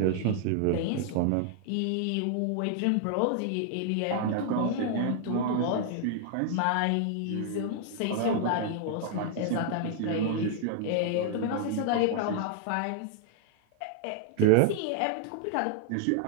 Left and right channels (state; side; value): different; both; correlation 0.00